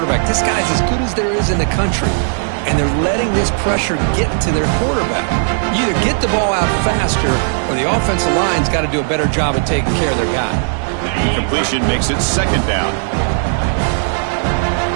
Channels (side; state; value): left; silent; 56 dB below the other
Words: This guy's as good as there is in the country, and they're letting this pressure get to their quarterback. You either get the ball out faster, or the offensive line's got to do a better job of taking care of their guy. The completion makes it 2nd down.